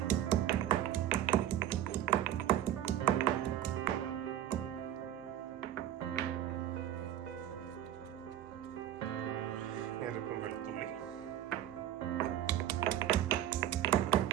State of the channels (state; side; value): quieter; left; 11.6 dB